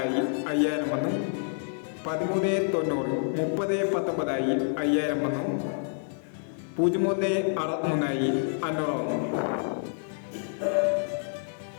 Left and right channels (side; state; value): right; silent; 59 dB below the other